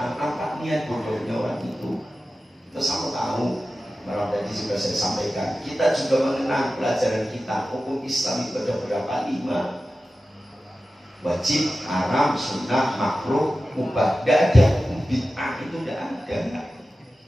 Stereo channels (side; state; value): both; normal; correlation 0.94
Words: Apa niat bodohnya orang itu? Itu sama tahu. Malah tadi juga saya sampaikan. Kita juga mengenal pelajaran kita. Hukum Islam itu ada berapa? 5. Wajib, haram, sunnah, makruh, mubah. Gak ada hukum bid'ah, itu gak ada.